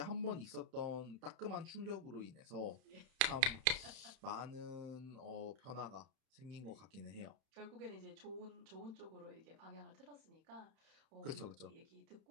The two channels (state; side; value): late; left; 31 ms